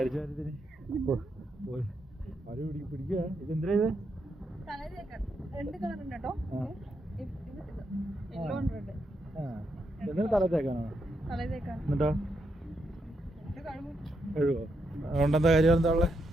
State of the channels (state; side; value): normal; both; correlation 0.81